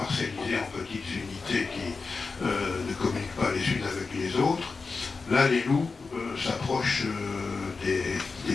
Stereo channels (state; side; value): quieter; right; 4.4 dB